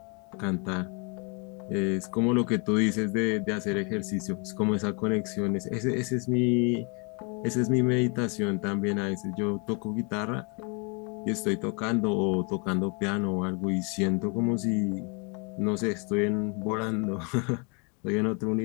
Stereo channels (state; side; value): quieter; right; 34.6 dB